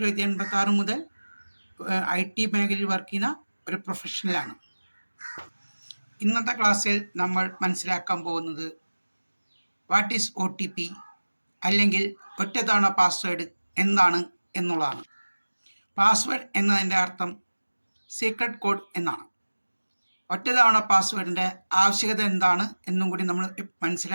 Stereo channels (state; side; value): inverted; both; correlation -1.00